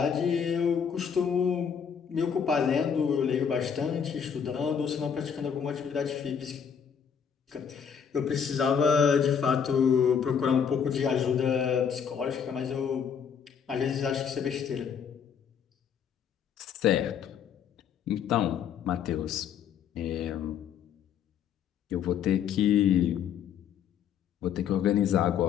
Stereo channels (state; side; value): quieter; right; 7.5 dB